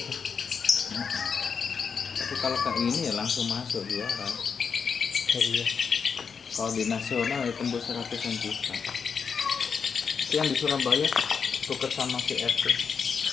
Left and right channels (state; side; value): quieter; right; 6.1 dB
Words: itu. Tapi kalau kayak ini ya langsung masuk juara. Iya. Kalau di nasional ya tembus 100-an juta. Itu yang di Surabaya tuker sama si RT.